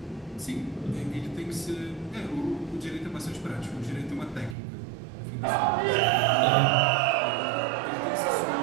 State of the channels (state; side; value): drops out; left; at 4.5 s